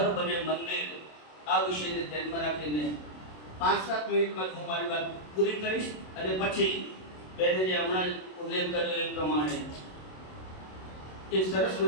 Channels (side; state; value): right; late; 27 ms